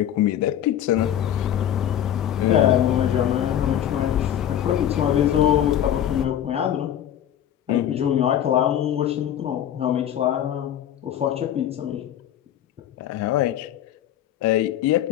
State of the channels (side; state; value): right; quieter; 10.8 dB